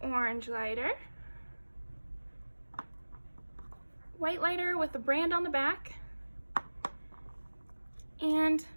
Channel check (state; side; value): inverted; both; correlation -1.00